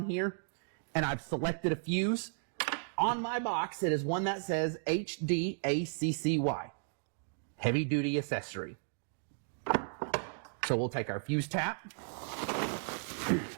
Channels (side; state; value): left; silent; digital silence